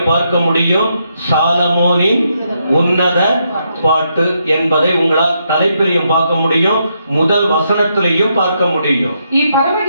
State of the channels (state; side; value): inverted; both; correlation -0.79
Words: பார்க்க முடியும் சாலமோனின் உன்னத பாட்டு என்பதை உங்களால் தலைப்பிலையும் பார்க்க முடியும், முதல் வசனத்திலையும் பார்க்க முடியும். ಈ